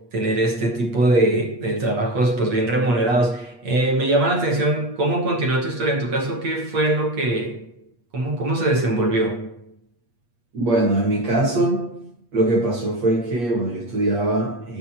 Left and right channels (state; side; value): late; left; 8.4 ms